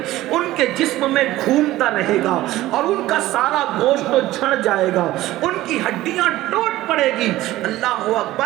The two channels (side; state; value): left; quieter; 16.1 dB